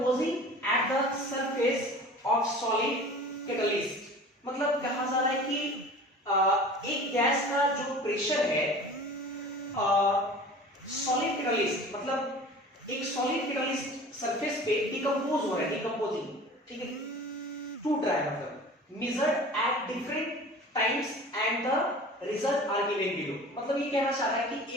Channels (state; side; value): normal; both; correlation 0.41